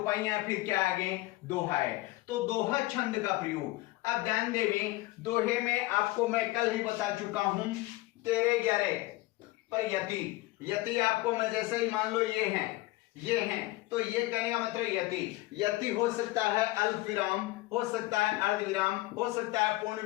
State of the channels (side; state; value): right; quieter; 19.4 dB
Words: हैं फिर क्या आगे दोहा है, तो दोहा छंद का प्रयोग। अब ध्यान देवें, दोहे में आपको मैं कल ही बता चुका हूं 13-11 पर यति आपको मैं जैसे ही मान लो ये हैं तो ये कहने का मतलब यति हो सकता है अल्प विराम, हो सकता है अर्ध विराम, हो सकता है पूर्ण